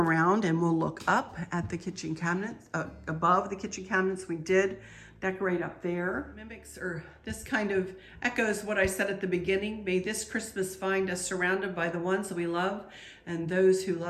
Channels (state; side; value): identical; both; correlation 1.00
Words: and we'll look up at the kitchen cabinets, above the kitchen cabinets. We did decorate up there. Mimics, or this kind of echoes what I said at the beginning. May this Christmas find us surrounded by the ones that we love and those who